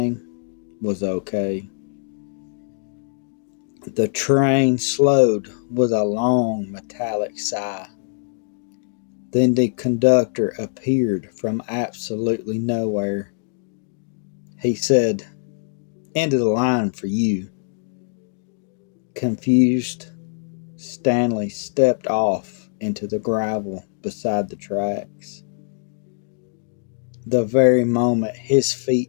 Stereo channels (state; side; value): silent; right; digital silence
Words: was okay. The train slowed with a long metallic sigh. Then the conductor appeared from absolutely nowhere. He said, "End of the line for you." Confused, Stanley stepped off into the gravel beside the tracks. The very moment his